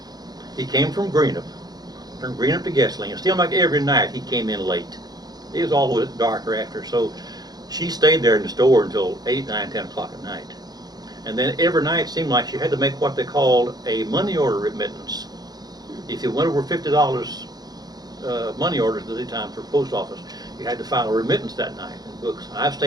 He came from Greenup to Guessling, and seemed like every night he came in late. It was always darker after, so she stayed there in the store until 8, 9, 10 o'clock at night. And then every night it seemed like she had to make what they called a money order remittance. If you went over $50 money orders at the time for post office, you had to file a remittance that night in books. And I've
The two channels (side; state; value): left; late; 0.19 ms